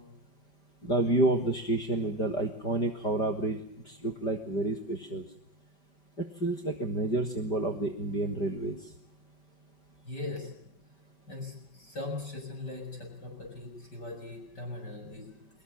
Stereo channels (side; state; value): right; late; 5.1 ms